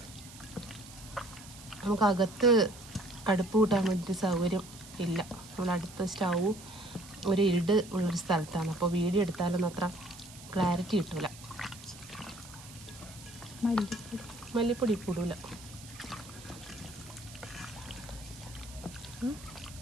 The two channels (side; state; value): right; noise; hiss, 17 dB below the sound